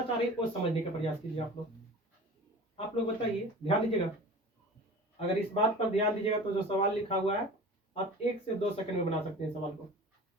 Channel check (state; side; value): normal; both; correlation 0.38